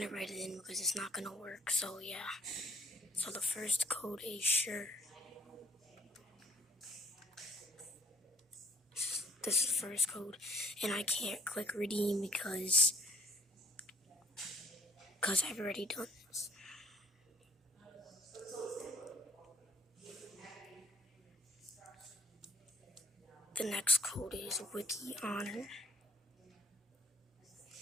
write it in because it's not gonna work. So yeah. So the first code is sure. This is the first code, and I can't click redeem because I've already done this. The next code is wiki honor.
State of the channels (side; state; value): both; normal; correlation 0.60